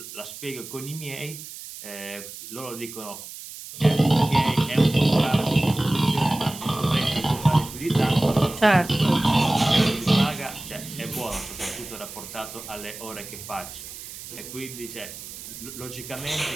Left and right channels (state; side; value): noise; right; hiss, 12 dB below the sound